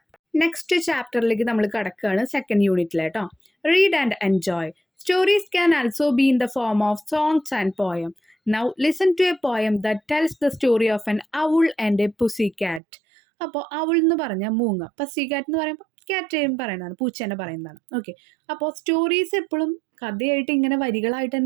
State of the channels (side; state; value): left; drops out; at 12.8 s